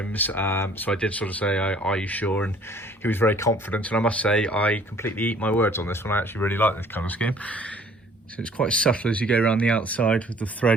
so I did sort of say, are you sure? And he was very confident, and I must say I completely eat my words on this one. I actually really like this colour scheme. So it's quite subtle as you go around the outside with the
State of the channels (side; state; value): both; normal; correlation 0.55